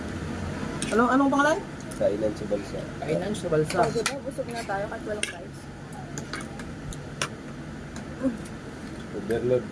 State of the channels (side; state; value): both; identical; correlation 1.00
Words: Anong pangalan? Kainan sa balsa. Kainan sa balsa. So, diba, busog na tayo kahit walang price. Overload